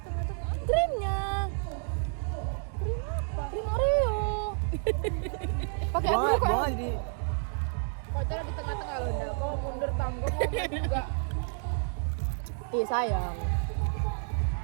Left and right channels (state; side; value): silent; left; 58 dB below the other